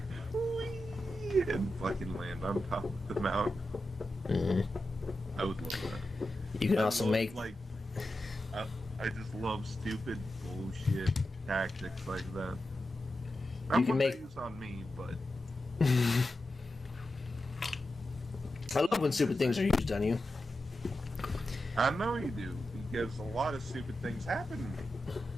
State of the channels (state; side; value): normal; both; correlation 0.90